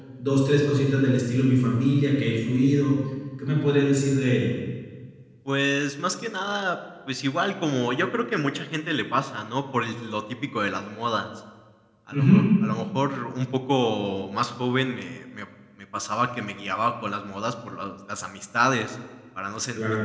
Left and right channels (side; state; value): both; identical; correlation 1.00